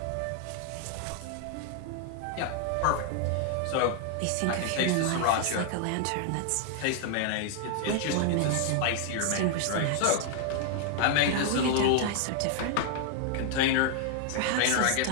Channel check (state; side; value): different; both; correlation 0.00